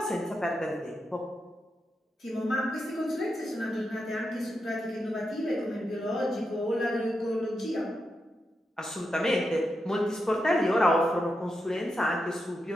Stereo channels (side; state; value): both; normal; correlation 0.86